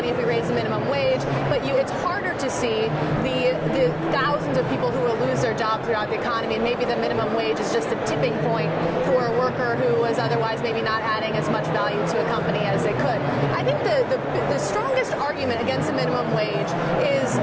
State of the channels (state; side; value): identical; both; correlation 1.00